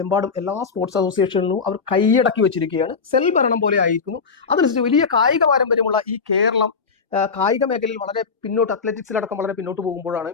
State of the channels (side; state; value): right; quieter; 5.3 dB